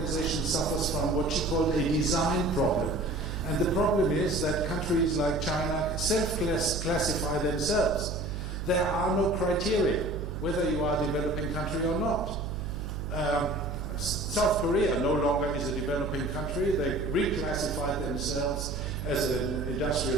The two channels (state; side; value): noise; right; hum, 5 dB below the sound